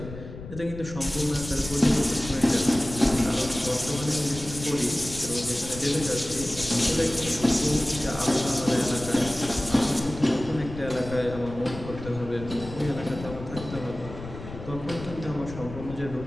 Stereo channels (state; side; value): noise; left; rumble, 12 dB below the sound